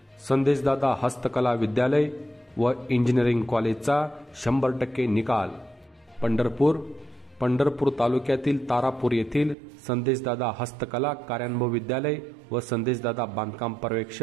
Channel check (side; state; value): left; drops out; at 9.6 s